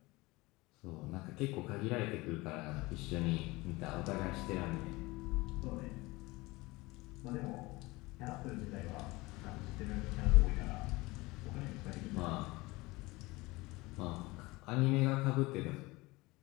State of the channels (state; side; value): quieter; right; 22.1 dB